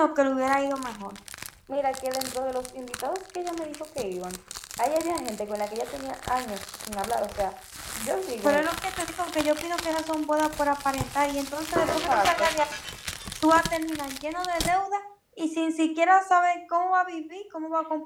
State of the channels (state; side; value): identical; both; correlation 1.00